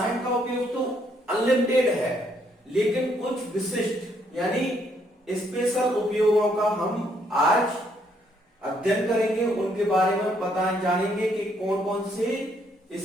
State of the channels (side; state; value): both; normal; correlation 0.71